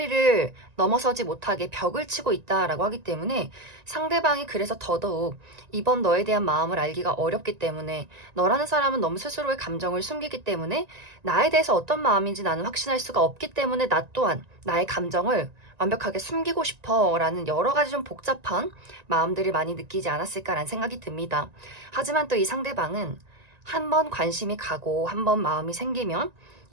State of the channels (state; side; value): late; left; 1.9 ms